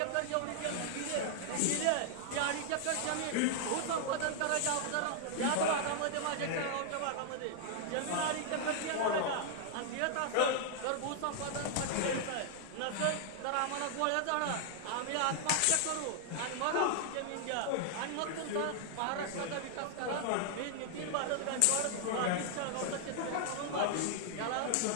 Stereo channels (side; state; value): both; different; correlation -0.01